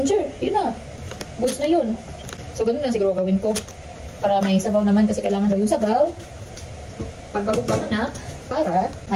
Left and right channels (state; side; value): identical; both; correlation 1.00